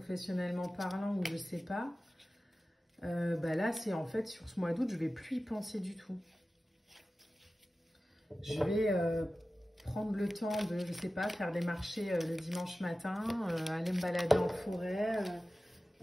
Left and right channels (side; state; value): both; normal; correlation 0.95